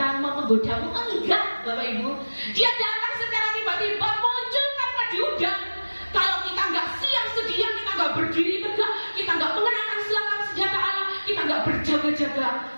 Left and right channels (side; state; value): both; inverted; correlation -1.00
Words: mau menggodamu, enggak Bapak Ibu, dia datang secara tiba-tiba, muncul tanpa diundang. Kalau kita nggak siap sedia, kita nggak berdiri tegak, kita nggak mengenakan selengkap senjata Allah, kita nggak berjaga-jaga,